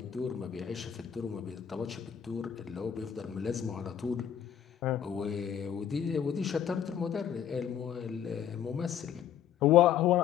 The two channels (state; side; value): quieter; right; 9.2 dB